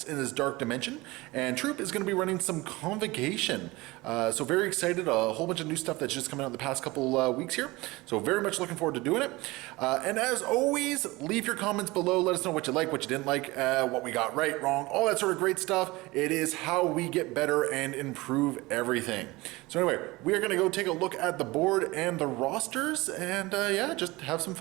in this dark dimension. And Troop is going to be running some Convocation. So very excited. A whole bunch of new stuff that's just coming out in the past couple weeks here. So very much looking forward to doing it. And as always, leave your comments below. Let us know what you like, what you didn't like, what we got right, wrong, all that sort of great stuff. It is how we get better and improve everything. So anyway, we are going to go take a look at the board and the rosters and yeah, just have some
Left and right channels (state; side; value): quieter; left; 21.5 dB